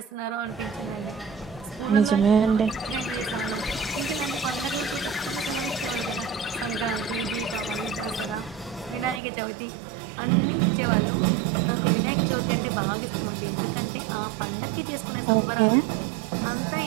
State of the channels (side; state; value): left; drops out; at 9.2 s